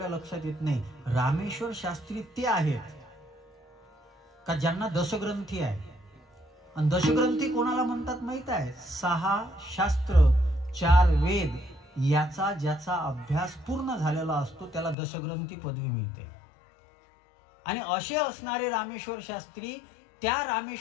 लक्षात येत नाही. रामेश्वर शास्त्री ते आहेत का ज्यांना दशग्रंथी आहे. आणि दशग्रंथी कोणाला म्हणतात माहित आहे? 6 शास्त्र 4 वेद याचा ज्याचा अभ्यास पूर्ण झालेला असतो त्याला दशग्रंथी पदवी मिळते. आणि असे असणारे रामेश्वर शास्त्री, त्या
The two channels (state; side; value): drops out; right; at 15.0 s